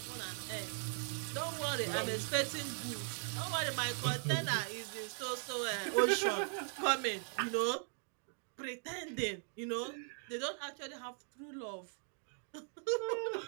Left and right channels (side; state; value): left; silent; 52 dB below the other